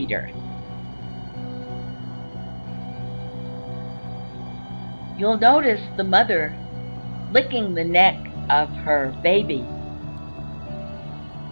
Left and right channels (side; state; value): both; inverted; correlation -1.00